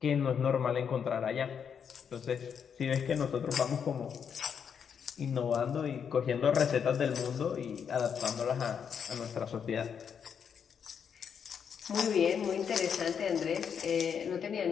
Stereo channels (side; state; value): right; quieter; 7.3 dB